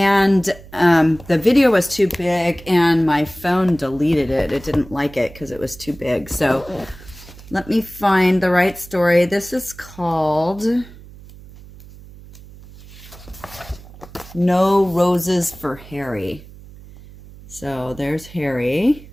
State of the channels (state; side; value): noise; right; hum, 19 dB below the sound